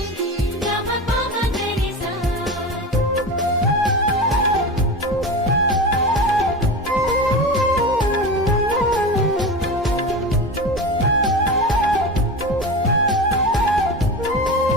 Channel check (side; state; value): both; normal; correlation 0.27